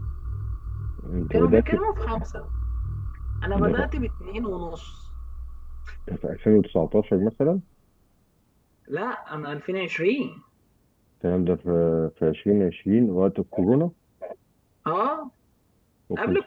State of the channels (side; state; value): both; identical; correlation 1.00